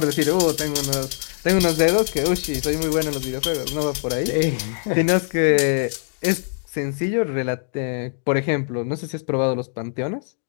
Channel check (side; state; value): right; silent; digital silence